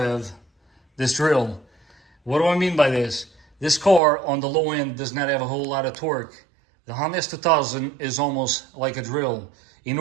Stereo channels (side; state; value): left; drops out; at 4.0 s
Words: this drill. What do I mean by this? This car on the low end does not have a whole lot of torque. The Honda S2000 is almost like a drill. In